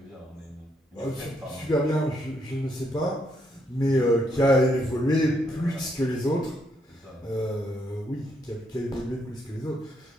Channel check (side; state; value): both; normal; correlation 0.75